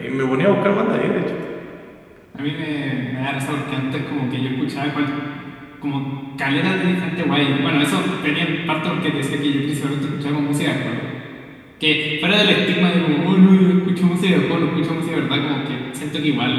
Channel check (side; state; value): both; identical; correlation 1.00